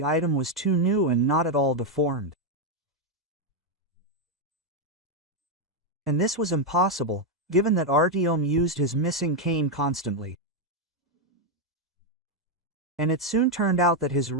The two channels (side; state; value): both; normal; correlation 0.02